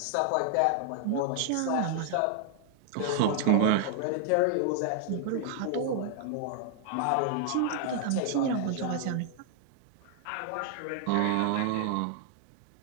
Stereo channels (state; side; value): different; both; correlation 0.00